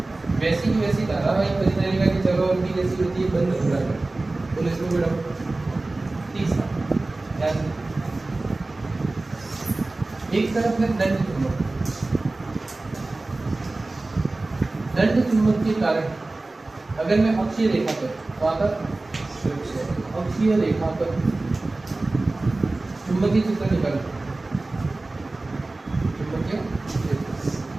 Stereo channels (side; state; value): left; quieter; 3.1 dB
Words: वैसी की वैसी धारावाहिक परिनालिका की जगह और भी जैसी होती है बंद वक्राकार। तो इसमें बेटा तीसरा याद, एक तरफ है दंड चुंबक। दंड चुंबक के कारण अगर मैं अक्षीय रेखा पर अक्षीय रेखा पर चुंबकीय क्षेत्र निकालूं, चुंबकीय क्षेत्र,